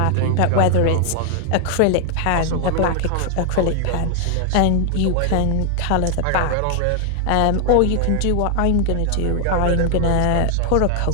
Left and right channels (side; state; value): both; different; correlation 0.00